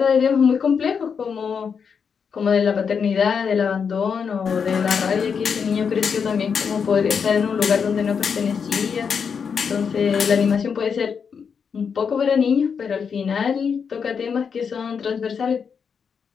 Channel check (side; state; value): right; quieter; 6.4 dB